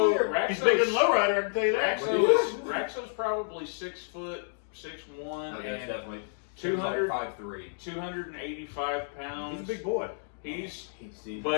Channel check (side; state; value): right; silent; digital silence